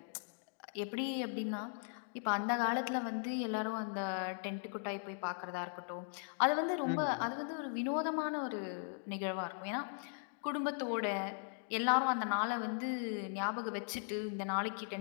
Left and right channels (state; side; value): silent; right; digital silence